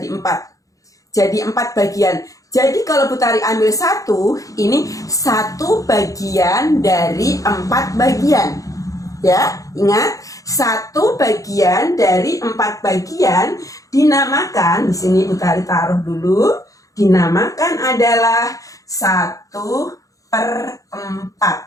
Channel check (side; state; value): right; late; 0.16 ms